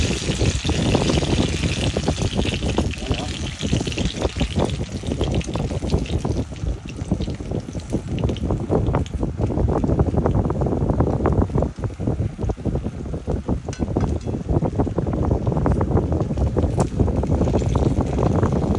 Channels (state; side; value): identical; both; correlation 1.00